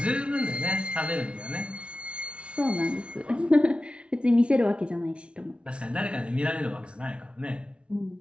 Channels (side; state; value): left; late; 0.059 ms